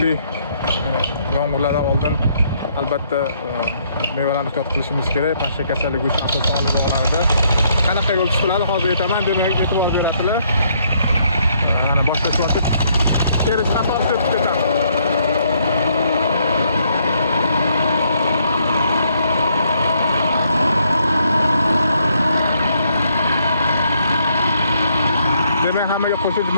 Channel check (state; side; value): inverted; both; correlation -0.70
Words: yomg'irlardan oldin albatta mevalarni ehtiyot qilishimiz kerak. Pashsha kasalligi uchun asosan olib bog'larida qanaqa yo'l tutiladi hozir aytaman, demak e'tibor berasizlar. Mana boshlashyapti. Teri qator sepib ketadi. Demak, hammaga qo'shimcha